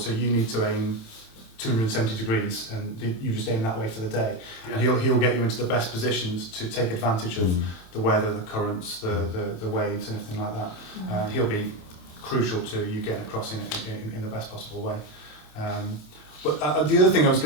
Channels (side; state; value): right; late; 27 ms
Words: you need to aim 270 degrees, and you just aim that way for the day. Yeah. And he'll get you into the best positions to take advantage of the weather, the currents, the waves, and everything like that. He'll be crucial to you getting across in the best possible way. But the other thing I was